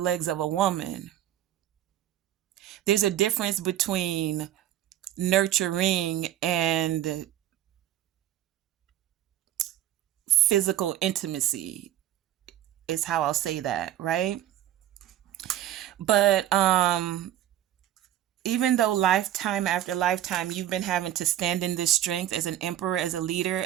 of a woman. There's a difference between nurturing and physical intimacy, is how I'll say that, right? But even though lifetime after lifetime you've been having to stand in this strength as an emperor, as a leader,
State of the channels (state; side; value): quieter; left; 12.4 dB